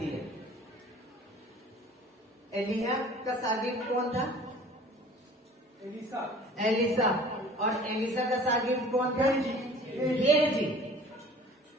है। एलिया का शागिर्द कौन था? एलिसा। और एलिसा का शागिर्द कौन था? गेहजी।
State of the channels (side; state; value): both; normal; correlation 0.47